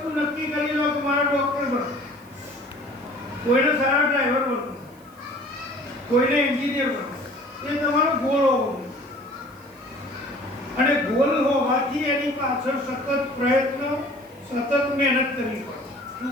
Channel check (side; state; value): right; noise; hiss, 28 dB below the sound